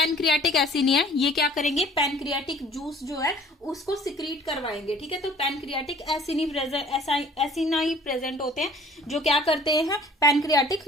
एसिनी है ये क्या करेंगे, पैनक्रियाटिक जूस जो है उसको सिक्रीट करवाएंगे, ठीक है। तो पैनक्रियाटिक एसिनाई प्रेजेंट होते हैं जो क्या करते हैं, पैनक्रियाटिक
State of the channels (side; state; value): both; normal; correlation 0.51